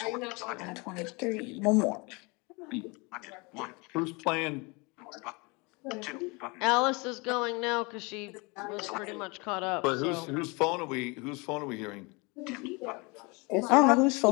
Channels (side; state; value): right; quieter; 28.1 dB